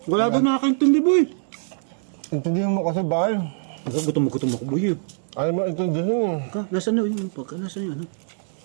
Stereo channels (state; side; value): silent; left; digital silence